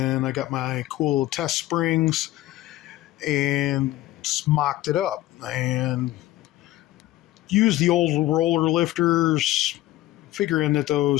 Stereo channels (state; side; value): quieter; right; 15.9 dB